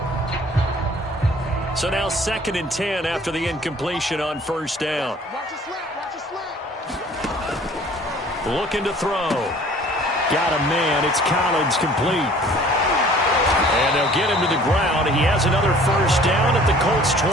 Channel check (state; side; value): normal; both; correlation 0.52